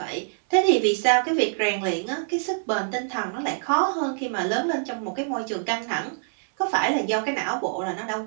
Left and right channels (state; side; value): silent; left; digital silence